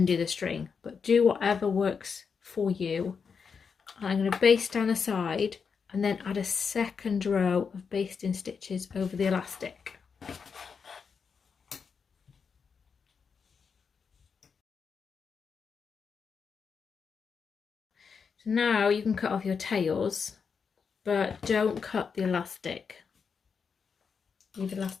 do the string, but do whatever works for you. I'm going to baste down the side and then add a second row of basting stitches over the elastic. So now you can cut off your tails, but don't cut the elastic. Leave the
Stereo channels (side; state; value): right; quieter; 5.9 dB